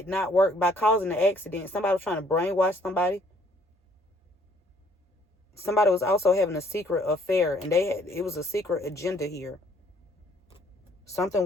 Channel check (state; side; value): normal; both; correlation 0.62